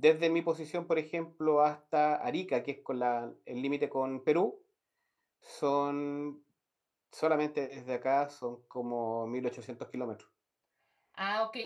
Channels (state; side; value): identical; both; correlation 1.00